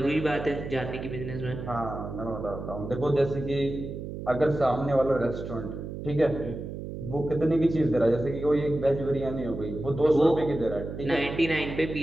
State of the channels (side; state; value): right; noise; hum, 8 dB below the sound